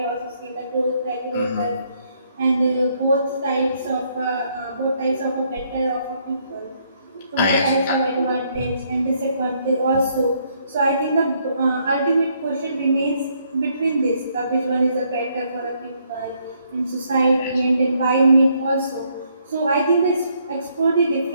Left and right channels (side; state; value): both; inverted; correlation -0.71